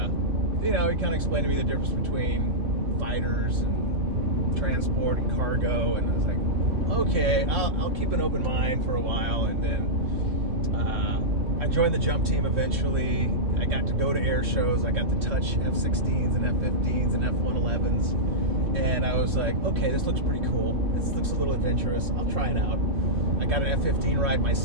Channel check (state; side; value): late; left; 3.1 ms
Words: he kind of explained to me the difference between fighters and transport and cargo. And I was like, okay, I'll keep an open mind for a while. And then I joined the jump team eventually. I got to go to air shows. I got to touch F-16s and F-15s and F-111s. And I was like, okay, this looks pretty cool. This looks a little adventurous. I'll try it out. I got an F-15 ride my